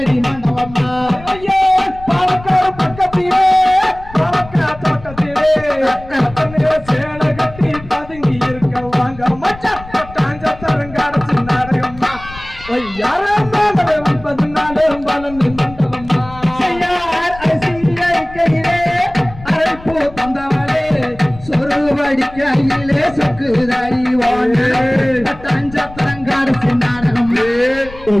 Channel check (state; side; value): noise; left; rumble, 17 dB below the sound